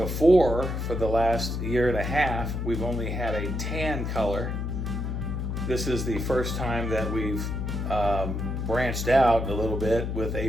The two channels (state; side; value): noise; left; hum, 2 dB below the sound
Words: for the last year and a half, we've only had a tan color. This is the first time that we've branched out a little bit with a